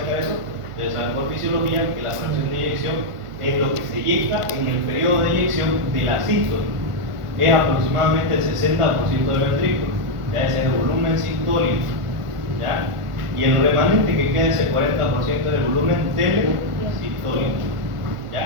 eso? Ustedes saben por fisiología que la fracción de eyección es lo que se eyecta en el periodo de eyección de la sístole. Es aproximadamente el 60% del ventrículo. Ya ese es el volumen sistólico. ¿Ya? Y el remanente que queda, ese 40% del volumen telesistólico.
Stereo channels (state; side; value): late; left; 1.5 ms